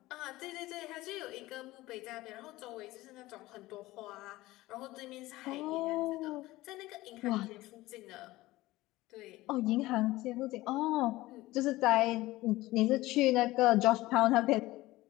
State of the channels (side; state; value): right; quieter; 18.3 dB